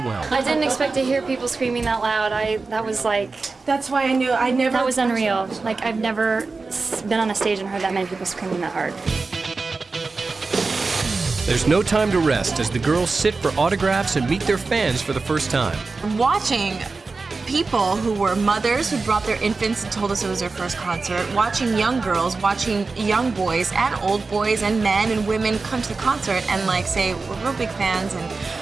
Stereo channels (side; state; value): left; quieter; 4.0 dB